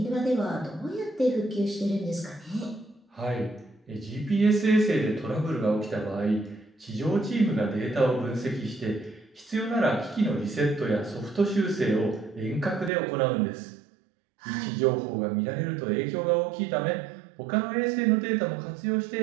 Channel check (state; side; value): drops out; left; at 12.9 s